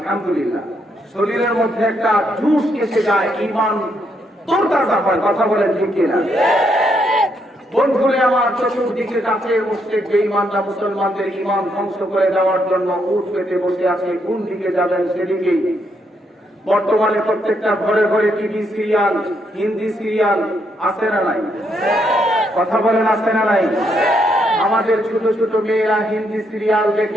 শরীরের মধ্যে একটা জোশ এসে যায়, ঈমান তোরতাজা হয়। কথা বলেন ঠিক কিনা? বন্ধুরে আমার, চতুর্দিকে কাছে বসে বেঈমানরা মুসলমানদের ঈমান ধ্বংস করে দেওয়ার জন্য উঠ পেতে বসে আছে। কোন দিকে যাবেন সেদিকেই। বর্তমানে প্রত্যেকটা ঘরে ঘরে টিভি সিরিয়াল, হিন্দি সিরিয়াল আছে না নাই? কথা বলেন, আছে না নাই? আমাদের ছোট ছোট মেয়েরা হিন্দি সিরিয়াল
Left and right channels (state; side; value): normal; both; correlation 0.76